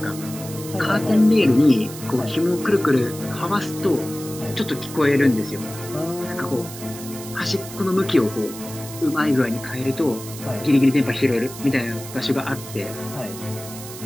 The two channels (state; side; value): noise; right; hiss, 13 dB below the sound